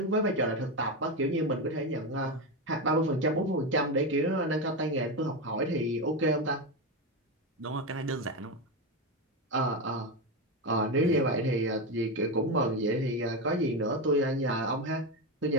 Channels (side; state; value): both; normal; correlation 0.14